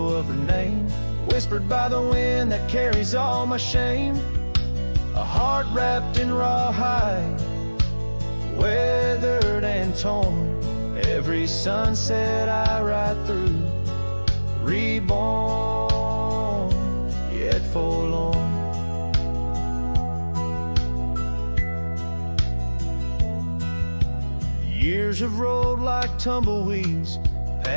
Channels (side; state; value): both; inverted; correlation -1.00